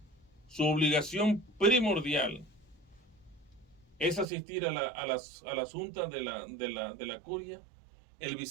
su obligación primordial, es asistir a las juntas de la curia, el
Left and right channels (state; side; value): drops out; left; at 4.2 s